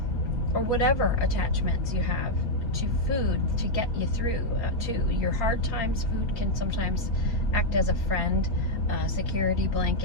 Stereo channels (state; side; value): late; right; 4.4 ms